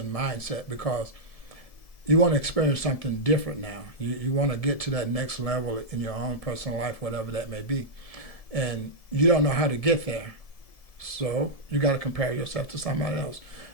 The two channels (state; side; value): late; right; 1.7 ms